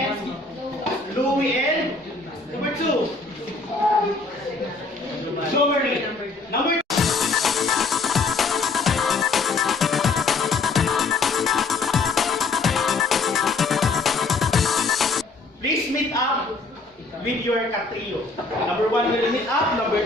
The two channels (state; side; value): quieter; right; 3.9 dB